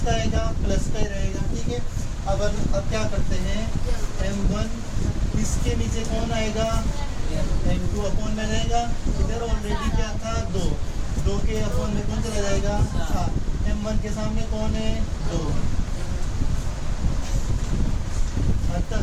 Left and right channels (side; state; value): both; identical; correlation 1.00